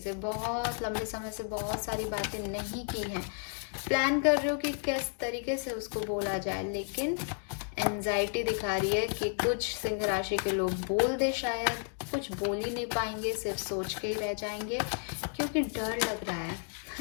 बहुत लंबे समय से बहुत सारी बातें नहीं की हैं, प्लान कर रहे हो कि किस तरीके से उसको बोला जाए, लेकिन एंजाइटी दिखा रही है कि कुछ सिंह राशि के लोग बोल दे, शायद कुछ बोल ही नहीं पाएंगे, सिर्फ सोच के ही रह जाएंगे क्योंकि डर लग रहा है।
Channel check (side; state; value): right; silent; 56 dB below the other